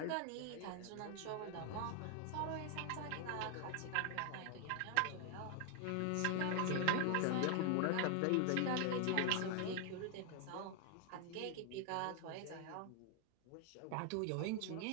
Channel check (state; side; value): different; both; correlation 0.00